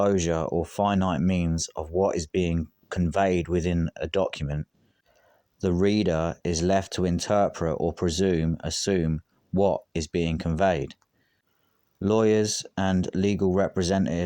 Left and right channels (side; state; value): both; identical; correlation 1.00